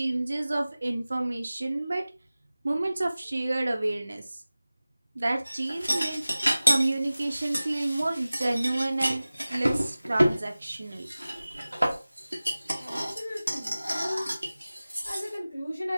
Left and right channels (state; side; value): inverted; both; correlation -0.98